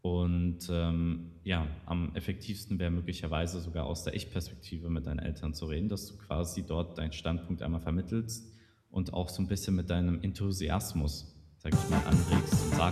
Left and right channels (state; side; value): identical; both; correlation 1.00